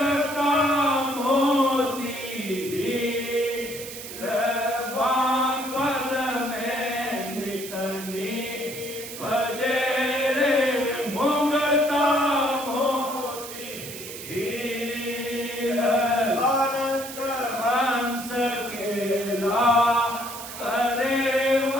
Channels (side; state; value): right; noise; hiss, 11 dB below the sound